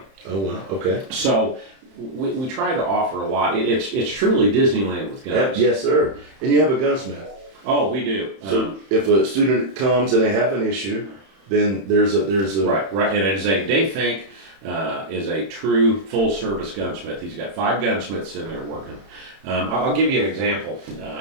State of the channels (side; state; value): left; late; 31 ms